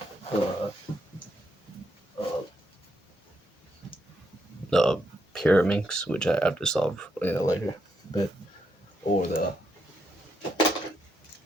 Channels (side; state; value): both; normal; correlation 0.79